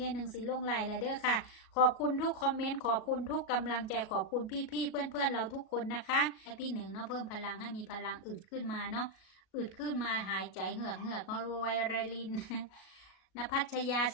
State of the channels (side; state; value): right; late; 36 ms